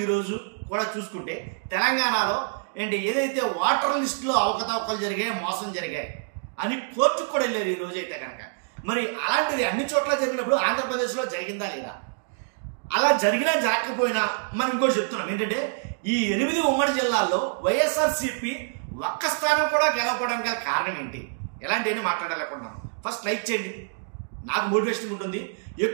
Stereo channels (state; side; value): silent; left; digital silence